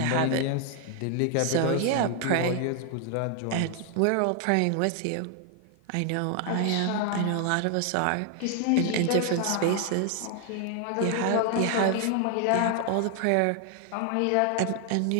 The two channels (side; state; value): both; different; correlation 0.00